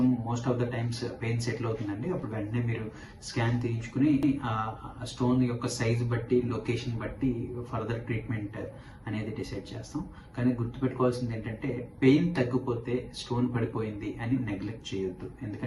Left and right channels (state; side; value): identical; both; correlation 1.00